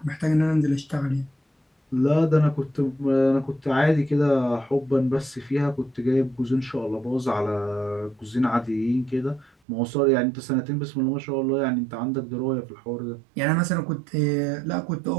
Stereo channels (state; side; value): drops out; left; at 9.5 s